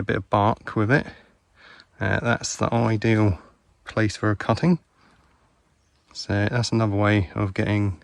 bit of bark with it. That's the ideal place for a cutting. So that's another way of getting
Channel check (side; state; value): both; identical; correlation 1.00